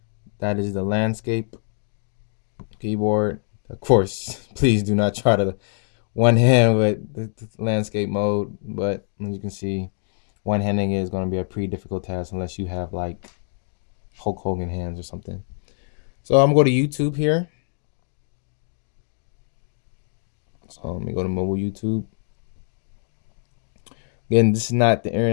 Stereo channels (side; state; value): right; silent; digital silence